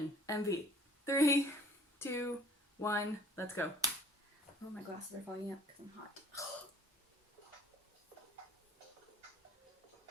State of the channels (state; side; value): normal; both; correlation 0.53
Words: MV. 3, 2, 1, let's go. Oh, my glasses are fogging up because I'm hot.